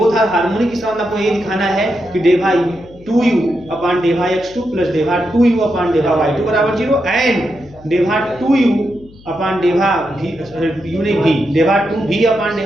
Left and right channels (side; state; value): left; noise; hum, 23 dB below the sound